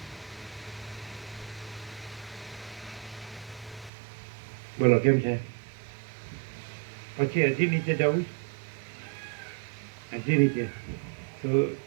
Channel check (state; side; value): drops out; left; at 3.9 s